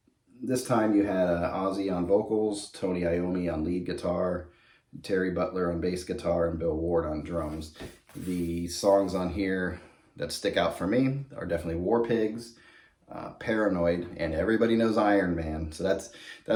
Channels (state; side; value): identical; both; correlation 1.00